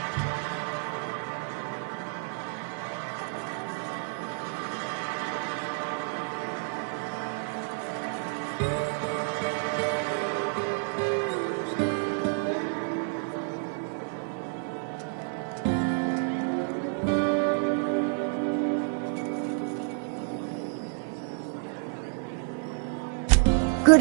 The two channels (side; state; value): left; silent; 55 dB below the other